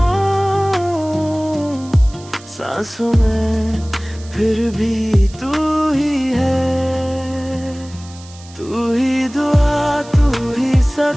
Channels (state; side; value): noise; right; hiss, 21 dB below the sound